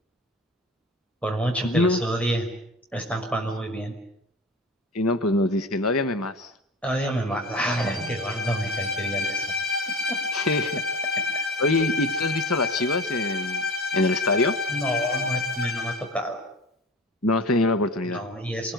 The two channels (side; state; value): both; normal; correlation 0.34